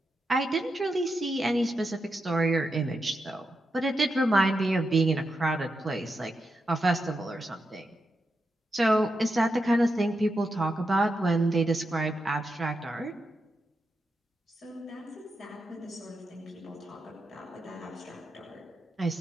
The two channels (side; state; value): both; normal; correlation 0.86